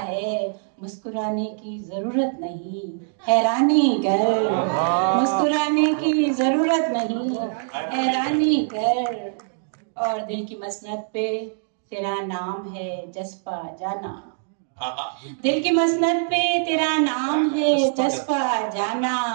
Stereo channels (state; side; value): silent; left; digital silence